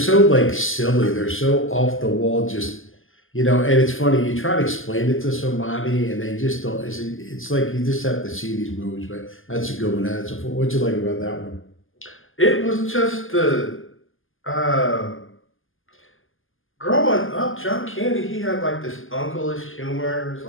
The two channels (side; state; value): right; late; 0.59 ms